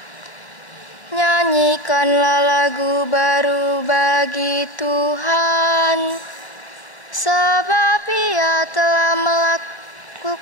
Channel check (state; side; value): late; right; 1.0 ms